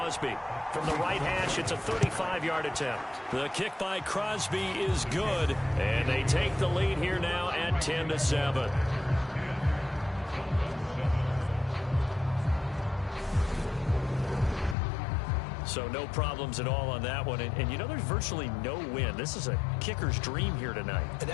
From the right hash, it's a 35-yard attempt. The kick by Crosby is good, and they take the lead here now at 10-7. So no problems at all on that one. And you know, there's virtually no wind. This is a kicker's dream here tonight. It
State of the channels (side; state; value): right; drops out; at 14.8 s